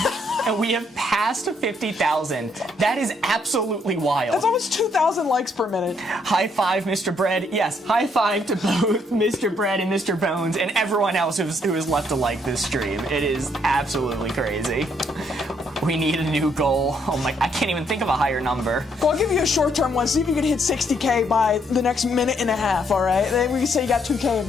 And we have passed 50,000. That is absolutely wild. That's almost 2,000 likes per minute. High five, Mr. Bread. Yes, high five to both Mr. Bread and Mr. Bones and everyone else who has left to like this stream. It is absolutely crazy. We need a new goal. Oh my, I can't even think of a higher number. Well, I'll give you a short-term one. See if you can hit 60K by the next minute and a half, all right? Then we can say you got 2K a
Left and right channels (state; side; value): normal; both; correlation 0.71